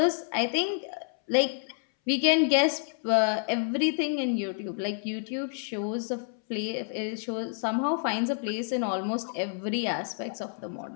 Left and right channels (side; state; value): right; silent; 59 dB below the other